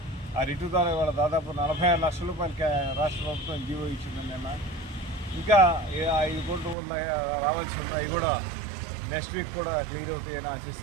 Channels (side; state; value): left; drops out; at 6.8 s